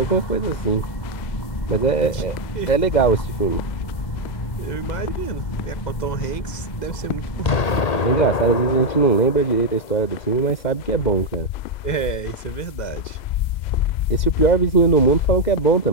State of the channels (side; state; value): right; late; 2.0 ms